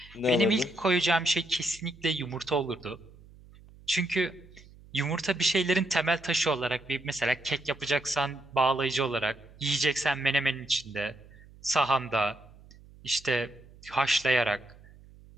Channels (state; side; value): noise; right; hum, 23 dB below the sound